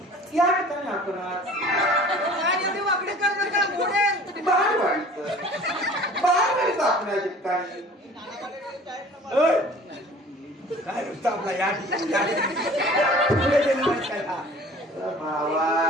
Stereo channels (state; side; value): normal; both; correlation 0.46